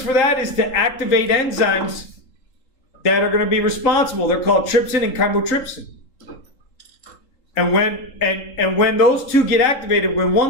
for that is to activate enzymes that are going to be responsible. They're called trypsin and chymotrypsin. And when those two get activated, when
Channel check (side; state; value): right; late; 3.8 ms